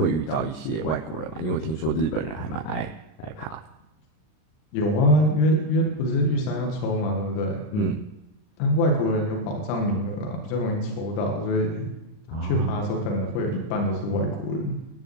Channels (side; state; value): right; late; 39 ms